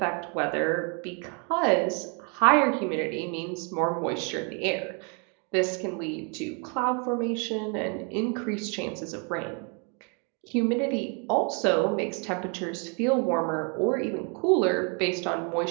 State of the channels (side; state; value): left; quieter; 36.6 dB